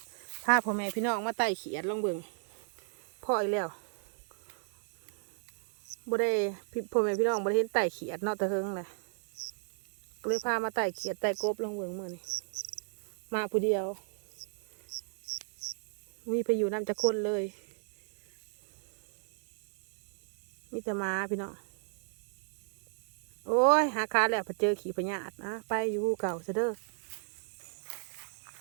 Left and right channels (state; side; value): silent; left; 55 dB below the other